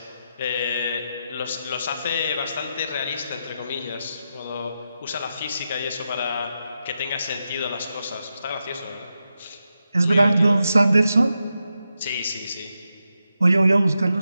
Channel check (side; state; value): both; inverted; correlation -0.87